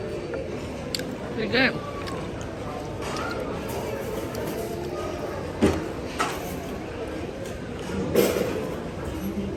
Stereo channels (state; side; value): identical; both; correlation 1.00